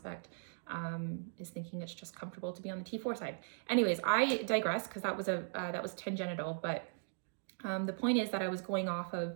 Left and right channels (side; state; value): left; silent; digital silence